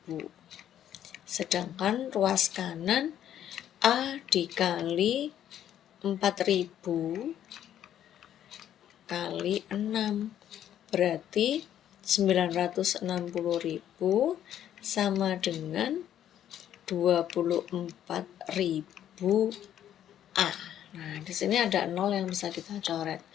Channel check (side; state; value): right; quieter; 10.7 dB